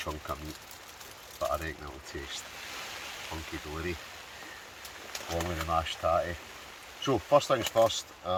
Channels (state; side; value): identical; both; correlation 1.00